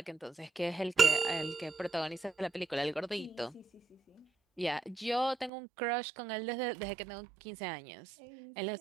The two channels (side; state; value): left; drops out; at 5.5 s